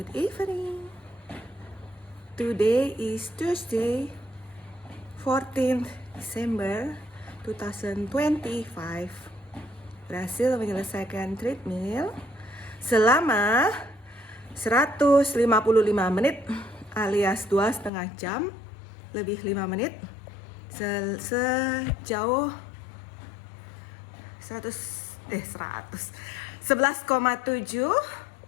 evening. Today is Tuesday, 14th December 2025. Berhasil menyelesaikan treadmill selama 155 menit alias 2,5 jam lebih 5 menit sejauh 11,7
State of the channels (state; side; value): drops out; right; at 17.9 s